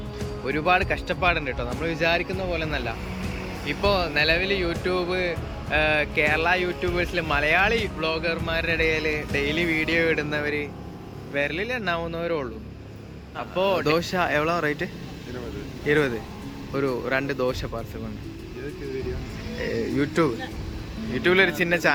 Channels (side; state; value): both; identical; correlation 1.00